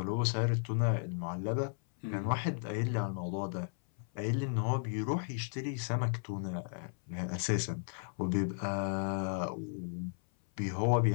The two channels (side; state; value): right; silent; 55 dB below the other